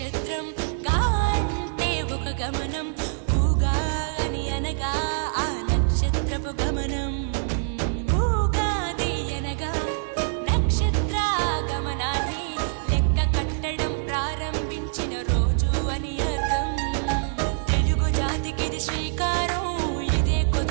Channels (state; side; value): silent; left; digital silence